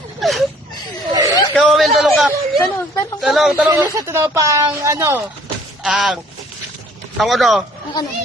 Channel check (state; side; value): normal; both; correlation 0.57